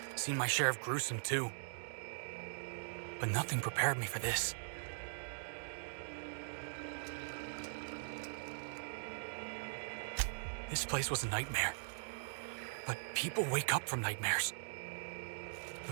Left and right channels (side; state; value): left; silent; digital silence